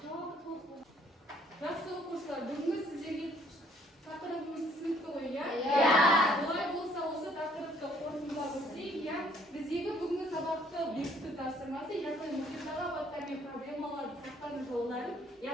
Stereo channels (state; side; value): normal; both; correlation 0.62